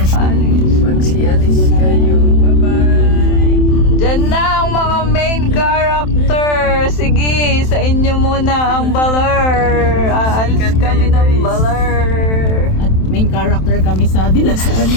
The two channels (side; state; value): right; late; 27 ms